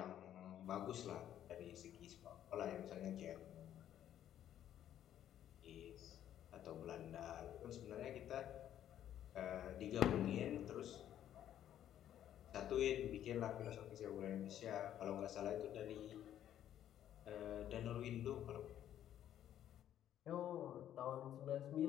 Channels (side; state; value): right; quieter; 11.0 dB